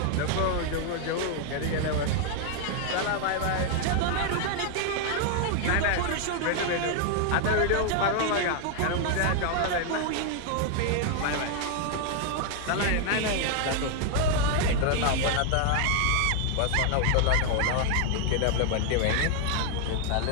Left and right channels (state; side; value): different; both; correlation 0.00